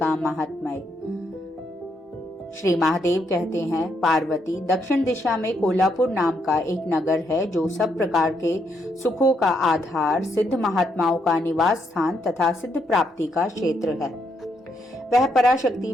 महात्म्य। श्री महादेव कहते हैं, पार्वती, दक्षिण दिशा में कोल्हापुर नाम का एक नगर है जो सब प्रकार के सुखों का आधार, सिद्ध महात्माओं का निवास स्थान तथा सिद्ध प्राप्ति का क्षेत्र है। वह पराशक्ति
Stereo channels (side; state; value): both; normal; correlation 0.77